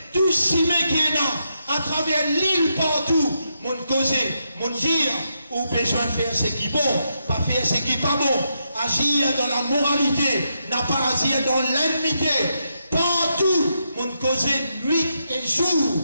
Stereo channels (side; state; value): both; inverted; correlation -0.82